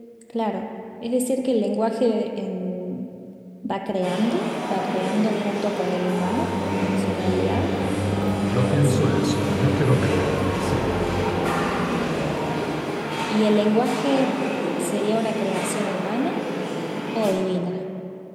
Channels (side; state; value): both; identical; correlation 1.00